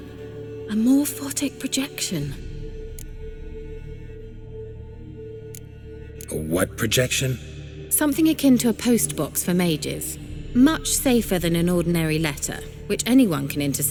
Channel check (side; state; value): both; identical; correlation 1.00